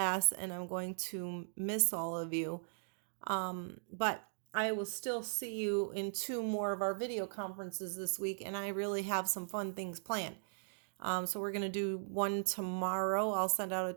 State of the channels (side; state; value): left; silent; digital silence